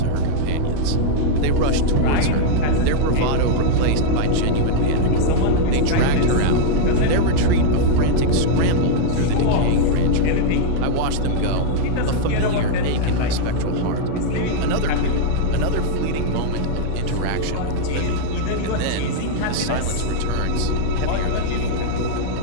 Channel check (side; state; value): both; different; correlation -0.01